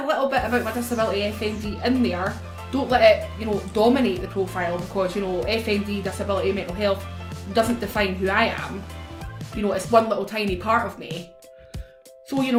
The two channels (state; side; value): identical; both; correlation 1.00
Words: little bit about my disability FND in there. Don't let it, you know, dominate the profile, because, you know, FND, disability, mental health doesn't define who I am. You know, it's one little tiny part of me. So, you